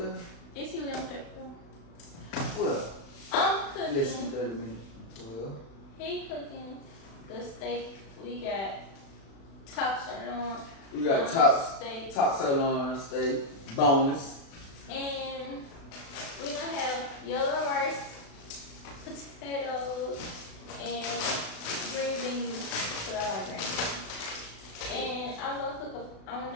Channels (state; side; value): late; right; 36 ms